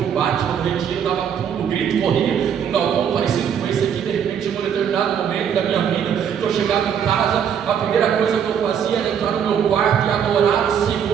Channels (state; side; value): quieter; left; 8.2 dB